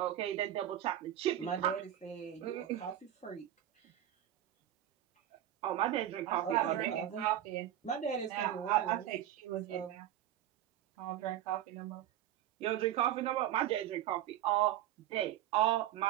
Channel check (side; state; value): left; quieter; 12.0 dB